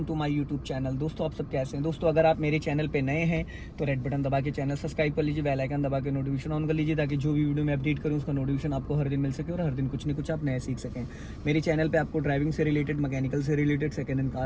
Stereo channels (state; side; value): identical; both; correlation 1.00